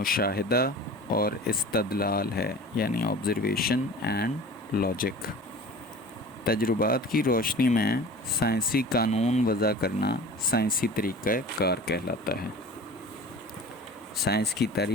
اور استدلال ہے، یعنی آبزرویشن اینڈ لاجک. تجربات کی روشنی میں سائنسی قانون وضع کرنا سائنسی طریقہ کار کہلاتا ہے. سائنس کی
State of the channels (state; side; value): normal; both; correlation 0.40